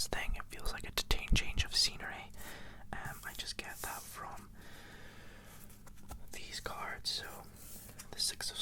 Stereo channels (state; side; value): identical; both; correlation 1.00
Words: thing. It feels like a change of scenery. I just get that from these cards. So the Six of